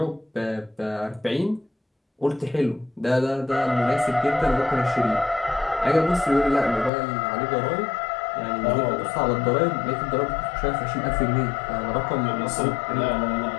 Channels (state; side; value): drops out; right; at 6.9 s